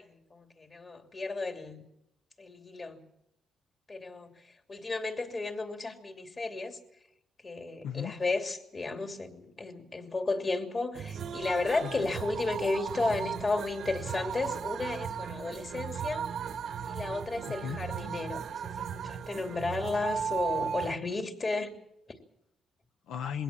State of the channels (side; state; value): both; normal; correlation 0.85